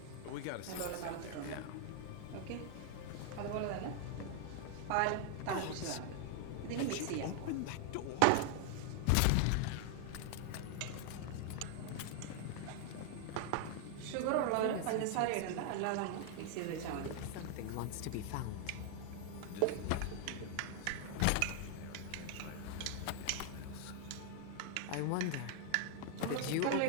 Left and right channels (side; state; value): both; different; correlation 0.00